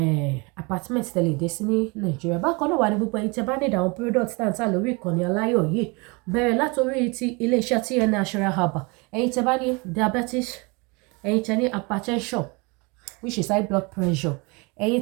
apartment tẹ́lẹ̀ dé sí ní Nàìjíríà. Bákan náà wà ní gbogbo ẹ̀yin tí ẹ bá need àwọn products tá ń tà lórí ìkànnì aláyọ̀ yìí, bẹ̀rẹ̀ látòrí ti iléeṣẹ́ TN Natural Herbal. Ẹ̀yin tí ẹ bá ní diabetes, ẹ̀yin tí ẹ ní hypertension which is high blood pressure,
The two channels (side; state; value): left; quieter; 28.7 dB